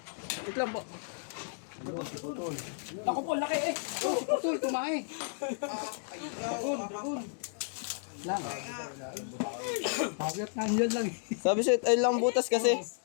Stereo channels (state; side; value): silent; right; digital silence